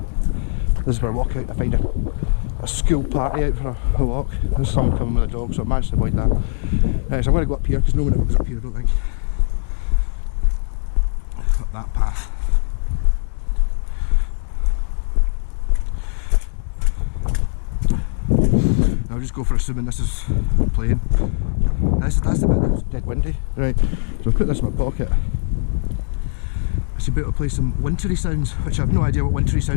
This is where I walk out to find a school party out for a walk. There's someone coming with a dog, so I managed to avoid that. So I'm going to go up here because no one ever goes up here, I don't think. Up that path. I'll just go for assuming this is playing. That's the bit that's dead windy. Right, so I'll put this in my pocket. I should be able to play some wintry sounds, which I have no idea what wintry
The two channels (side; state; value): right; silent; digital silence